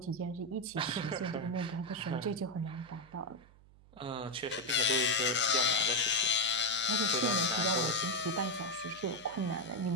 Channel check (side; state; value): right; noise; hum, 25 dB below the sound